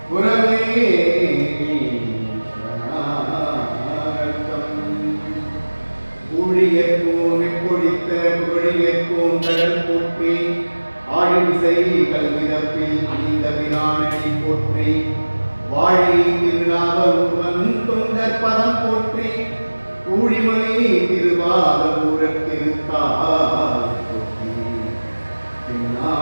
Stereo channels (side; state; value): both; inverted; correlation -1.00